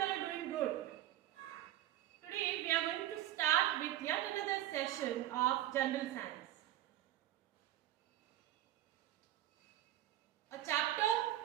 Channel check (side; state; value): left; quieter; 13.6 dB